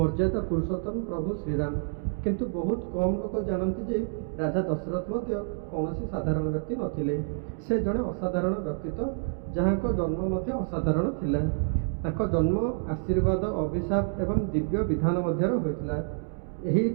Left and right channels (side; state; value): left; silent; 59 dB below the other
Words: ପୁରୁଷୋତ୍ତମ ପ୍ରଭୁ ଶ୍ରୀରାମ। କିନ୍ତୁ ବହୁତ କମ୍ ଲୋକ ଜାଣନ୍ତି ଯେ ରାଜା ଦଶରଥ ମଧ୍ୟ କୌଣସି ସାଧାରଣ ବ୍ୟକ୍ତି ନଥିଲେ। ସେ ଜଣେ ଅସାଧାରଣ ବ୍ୟକ୍ତିତ୍ୱ, ଯାହାଙ୍କ ଜନ୍ମ ମଧ୍ୟ ଅସାଧାରଣ ଥିଲା। ତାଙ୍କ ଜନ୍ମ ଆଶୀର୍ବାଦ, ଅଭିଶାପ ଏବଂ ଦିବ୍ୟ ବିଧାନ ମଧ୍ୟରେ ହୋଇଥିଲା। ଏହି